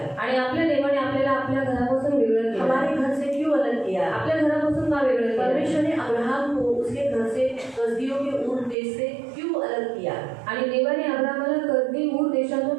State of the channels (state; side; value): drops out; left; at 8.8 s